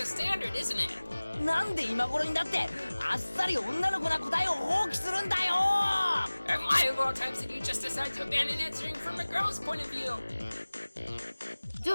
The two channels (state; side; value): inverted; both; correlation -1.00